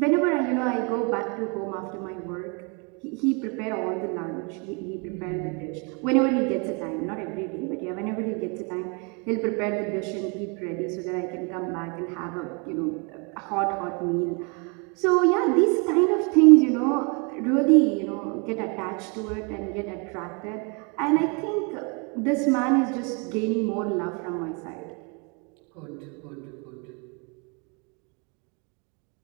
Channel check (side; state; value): left; quieter; 33.6 dB